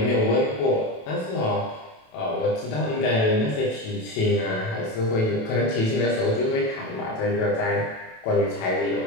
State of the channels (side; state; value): right; late; 28 ms